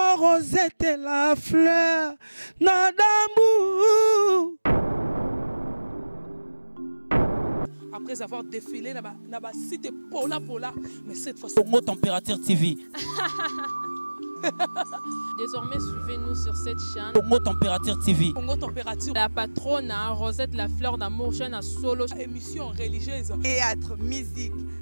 Rosette la fleur, Nadambu. Après avoir défilé, n'a cité Pola, mais cette fois Congo Température TV. Désormais, suivez-nous sur cette chaîne. Congo Température TV. Congo Température. La patronne, Rosette la fleur d'amour, chaîne à solo. Émission religieuse. Théâtre, musique,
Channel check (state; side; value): inverted; both; correlation -1.00